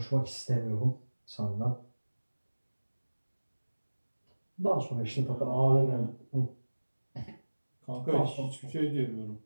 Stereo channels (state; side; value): inverted; both; correlation -1.00